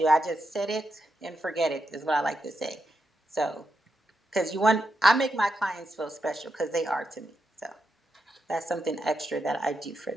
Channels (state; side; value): normal; both; correlation 0.85